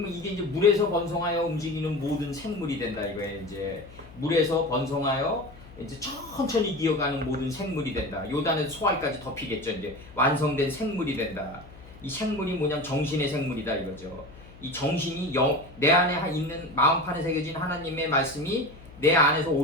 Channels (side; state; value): left; noise; hum, 20 dB below the sound